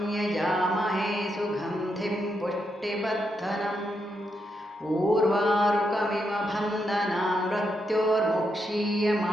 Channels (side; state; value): both; normal; correlation 0.82